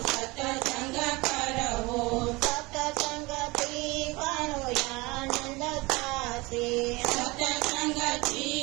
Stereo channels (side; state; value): left; quieter; 23.7 dB